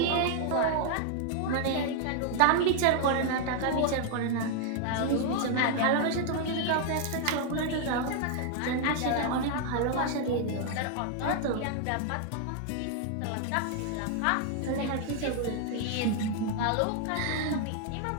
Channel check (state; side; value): different; both; correlation 0.00